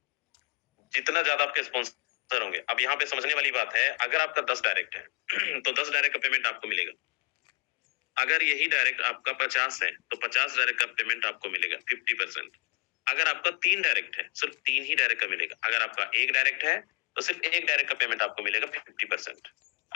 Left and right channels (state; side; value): quieter; right; 26.9 dB